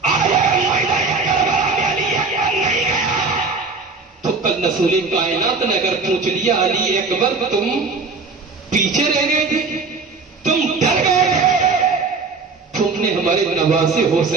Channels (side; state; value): left; quieter; 4.2 dB